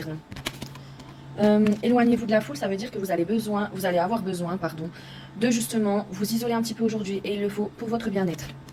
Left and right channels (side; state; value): both; identical; correlation 1.00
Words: non. Éloignez-vous de la foule, ça veut dire que vous allez avoir besoin de justement vous isoler un petit peu aujourd'hui et il le faut pour votre bien-être.